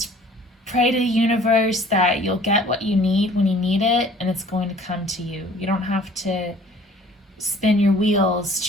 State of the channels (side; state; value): both; normal; correlation 0.52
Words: pray to the universe that you'll get what you need when you need it, and it's going to come to you. You don't have to spin your wheels